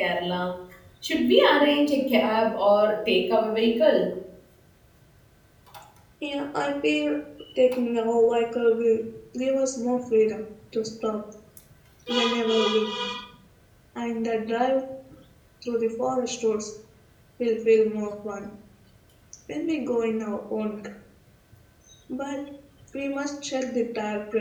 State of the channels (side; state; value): both; identical; correlation 1.00